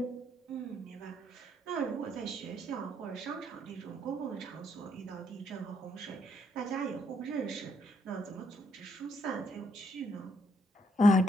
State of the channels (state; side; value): normal; both; correlation 0.73